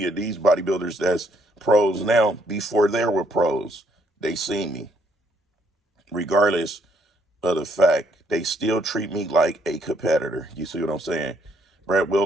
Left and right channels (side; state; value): both; normal; correlation 0.70